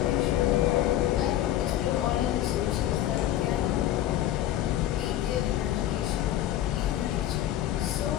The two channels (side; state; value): right; quieter; 12.6 dB